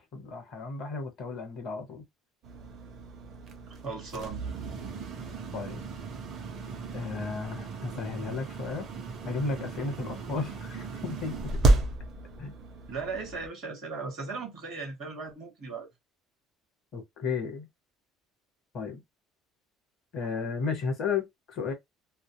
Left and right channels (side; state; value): both; normal; correlation 0.58